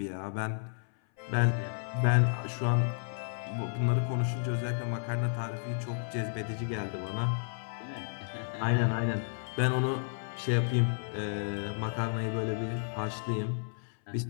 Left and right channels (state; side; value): silent; right; 56 dB below the other